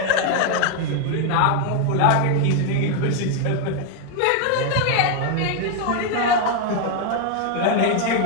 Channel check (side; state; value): both; different; correlation 0.01